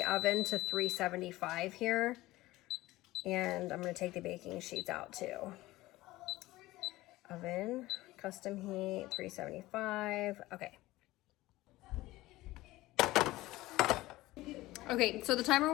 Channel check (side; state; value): right; quieter; 18.0 dB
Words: oven to 375 here. And I'm going to take the baking sheets out too. Oven, custom heat, 375. Okay. Okay, so the timer